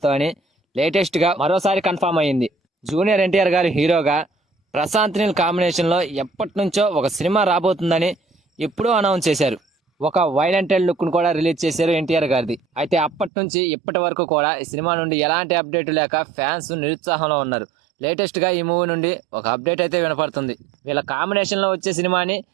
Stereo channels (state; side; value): drops out; left; at 13.3 s